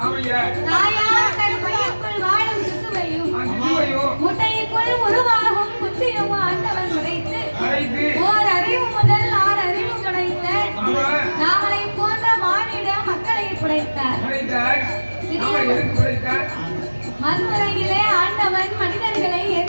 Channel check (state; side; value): inverted; both; correlation -1.00